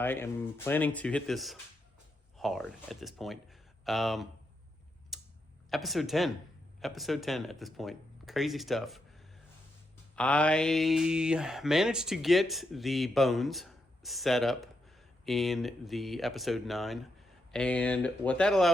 am planning to hit this hard at this point. Um, episode 10. Episode 10 at this point. Crazy stuff. I managed to get the bones set up in the episode 9. And what that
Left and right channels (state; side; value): normal; both; correlation 0.82